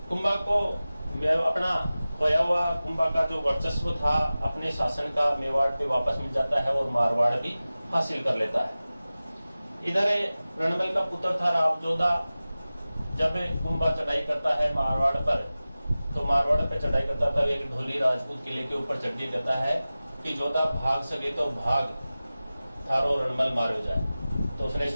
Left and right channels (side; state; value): both; inverted; correlation -0.97